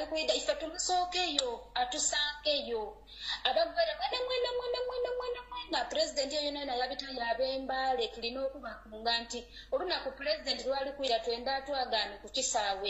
kwida ife tumusookeyo atusankeyo abagwere mwena President yona yabita yabembale tulina okubakunga nti olunaku President lwali kwira twenda atwagane ku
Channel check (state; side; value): identical; both; correlation 1.00